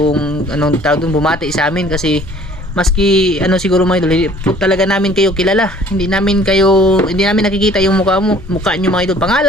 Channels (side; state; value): both; normal; correlation 0.54